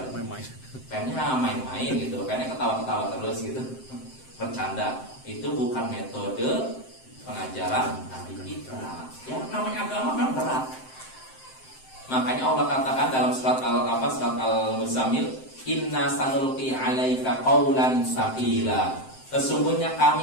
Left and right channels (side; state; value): right; late; 7.7 ms